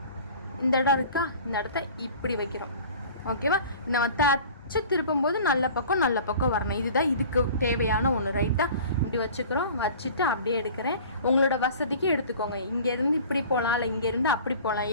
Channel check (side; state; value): both; inverted; correlation -0.44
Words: இந்த இடம் இருக்கா, இந்த இடத்த இப்படி வைக்கிறோம். ஓகேவா, நம்ம தச்சு திருப்பும்போது நல்ல பக்கம் வரணும். இதுதான் இதுக்கு தேவையான ஒன்று ரைட்டாக. இப்படி வச்சுக்கிறோம். வச்சுட்டு அப்படியே எடுக்கிறேன். உங்களோட வசதிக்கு எடுத்துக்கோங்க. இங்கேருந்து இப்படி போகலாம், இல்லை இங்கேருந்து அப்படி போகலாம்.